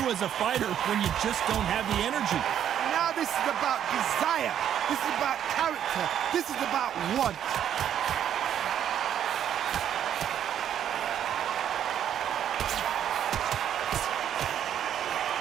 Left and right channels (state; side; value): quieter; left; 9.9 dB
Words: as a fighter when you just don't have the energy? Now this is about desire. This is about character. This is about want.